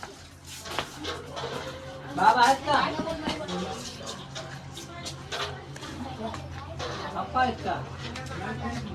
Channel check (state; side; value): identical; both; correlation 1.00